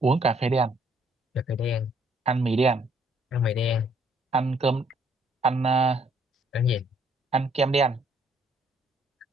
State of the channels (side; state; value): both; normal; correlation 0.66